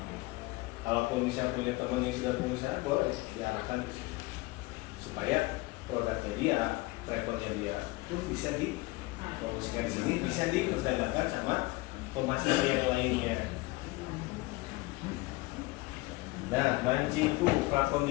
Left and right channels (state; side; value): quieter; right; 22.3 dB